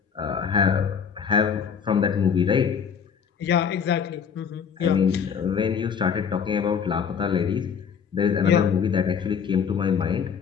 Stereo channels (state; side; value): quieter; right; 7.0 dB